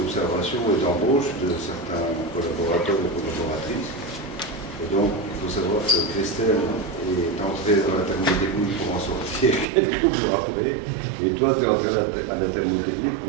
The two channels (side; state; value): left; drops out; at 9.7 s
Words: et d'embauche de certains collaborateurs et collaboratrices. Et donc, il faut savoir que Christelle est entrée dans la thermotechnique pour en sortir quelques mois après. Et toi, tu es entré à la thermotechnique